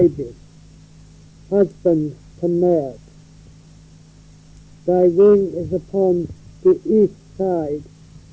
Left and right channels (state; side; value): identical; both; correlation 1.00